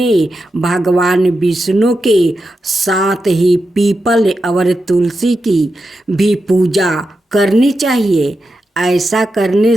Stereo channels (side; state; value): both; normal; correlation 0.89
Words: भगवान विष्णु के साथ ही पीपल और तुलसी की भी पूजा करनी चाहिए। ऐसा करने